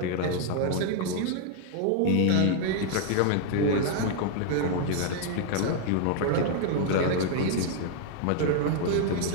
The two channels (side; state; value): both; different; correlation 0.00